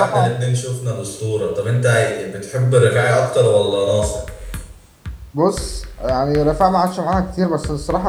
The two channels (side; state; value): both; identical; correlation 1.00